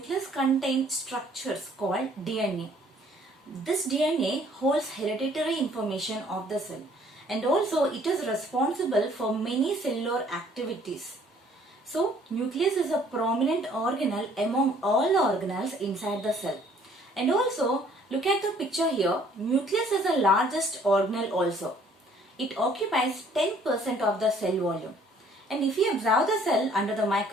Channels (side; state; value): both; normal; correlation 0.59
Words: contains structures called DNA. This DNA holds hereditary information of the cell and also it is responsible for many cellular activities. So, nucleus is a prominent organelle among all the organelles inside the cell. And also, look at the picture here, nucleus is the largest organelle also. It occupies 10% of the cell volume. And if we observe the cell under the